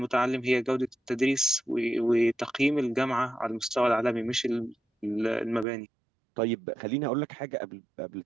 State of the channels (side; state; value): left; drops out; at 5.7 s